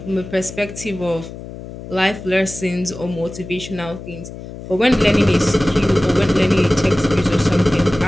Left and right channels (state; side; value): noise; left; hum, 13 dB below the sound